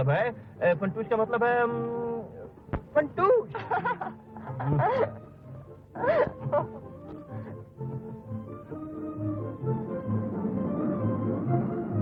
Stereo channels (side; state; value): both; identical; correlation 1.00